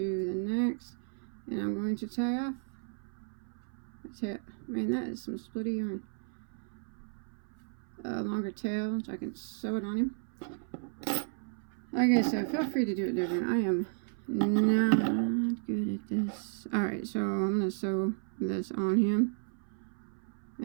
the next, and I'm going to tie off. Man, that is some splitty yarn. A longer tail, so I can sew it on him. Like I said, feel free to do it different. I am not good at this. Alright, so I'm going to sew this on him.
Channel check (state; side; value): silent; left; 56 dB below the other